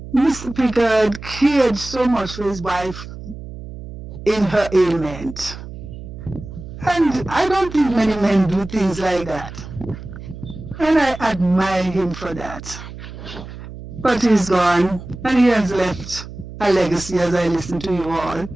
Mr. Pickett cared so much for his wife in her ailment. And I don't think many men do things like that. And I admire him for that. But he's gone, and he has left a legacy as I listen to you all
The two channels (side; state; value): right; noise; hum, 12 dB below the sound